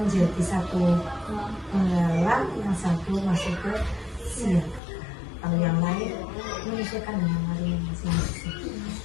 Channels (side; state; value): right; drops out; at 4.8 s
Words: 1 penggalang, yang 1 masuk ke siaga. Kalau yang lain menyesuaikan dengan hari masing-masing.